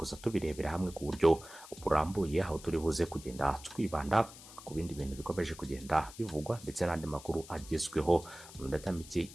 tubirebera hamwe ku buryo burambuye, aho turi buze kugenda twibanda ku bindi bintu bikomeje kugenda bivugwa ndetse n'andi makuru agezweho mu minota mike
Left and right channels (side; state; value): left; noise; hiss, 17 dB below the sound